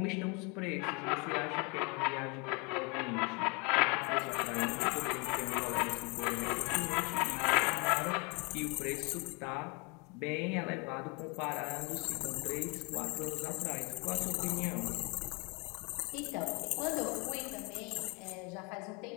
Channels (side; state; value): right; quieter; 30.9 dB